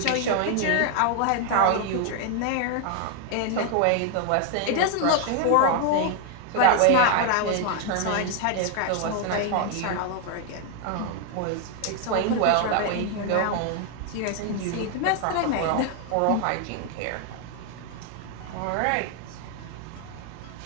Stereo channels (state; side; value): different; both; correlation 0.00